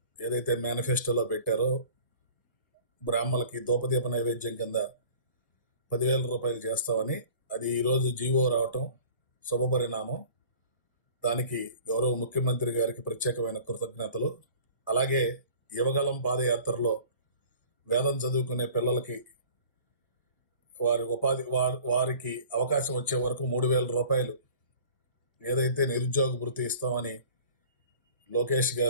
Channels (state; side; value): inverted; both; correlation -0.47